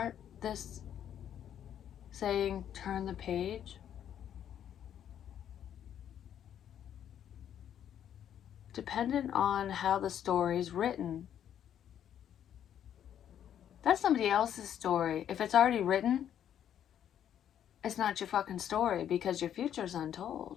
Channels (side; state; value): right; quieter; 9.9 dB